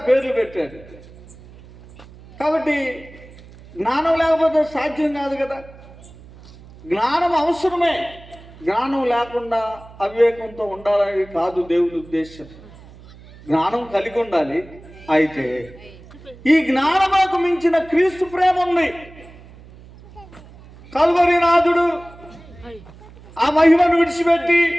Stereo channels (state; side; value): noise; right; hum, 21 dB below the sound